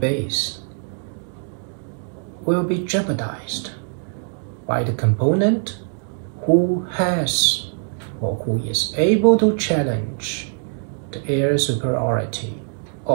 will be jeopardized by the component who has or who is able to challenge the air superiority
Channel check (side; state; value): left; silent; digital silence